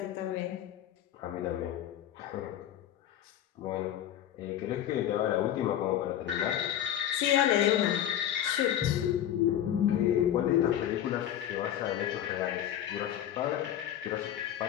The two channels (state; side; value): quieter; right; 11.1 dB